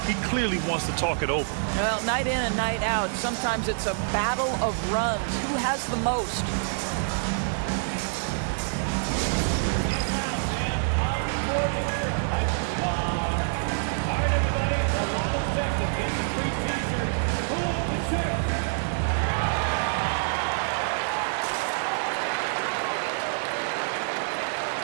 He clearly wants to talk it over. Well, night in and night out, sometimes it's a battle of runs. Who has the most?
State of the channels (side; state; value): left; silent; digital silence